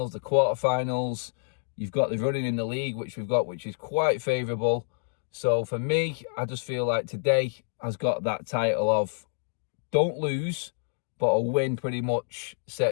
the quarter-finals. You've got the running in the league, which we've got, which is quite favourable. So for me, I just feel like today has got that title of don't lose, but a win pretty much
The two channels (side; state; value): right; silent; digital silence